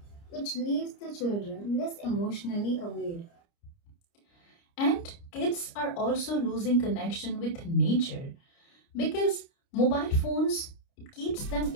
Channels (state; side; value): late; right; 30 ms